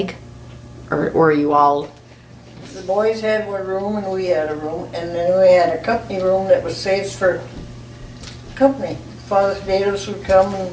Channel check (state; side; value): identical; both; correlation 1.00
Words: Or were you all, The boys had one room and we had a room, and then we had a company room that was saved for company. Father Dados would come